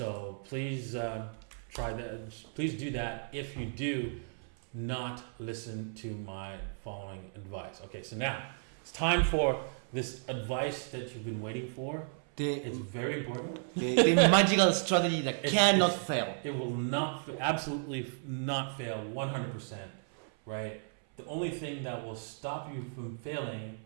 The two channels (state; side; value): silent; left; 55 dB below the other